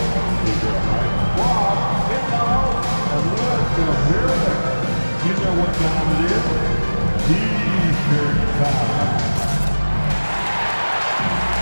You know what time it is? T-shirt time.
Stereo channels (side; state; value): both; inverted; correlation -1.00